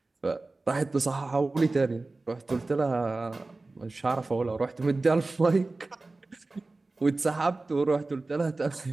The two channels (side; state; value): left; quieter; 3.3 dB